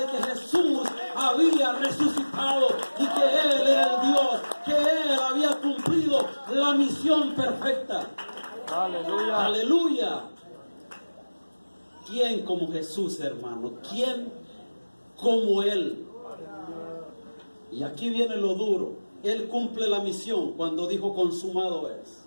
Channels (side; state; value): both; inverted; correlation -1.00